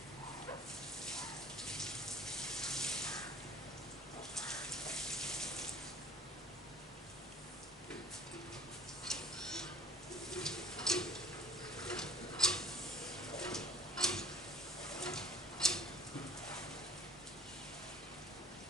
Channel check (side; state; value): both; normal; correlation 0.52